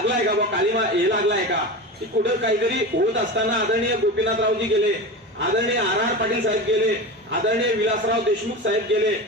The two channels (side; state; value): both; normal; correlation 0.26